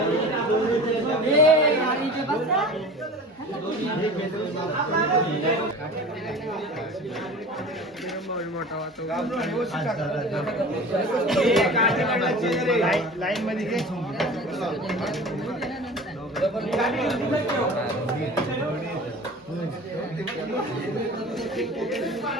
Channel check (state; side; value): normal; both; correlation 0.38